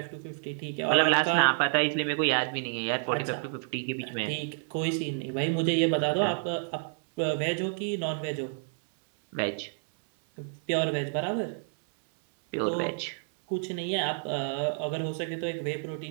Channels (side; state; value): left; silent; 58 dB below the other